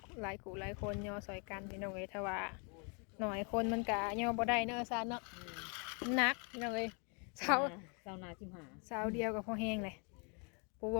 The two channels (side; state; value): right; quieter; 35.8 dB